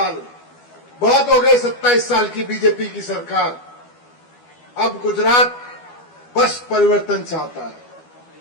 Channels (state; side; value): late; right; 12 ms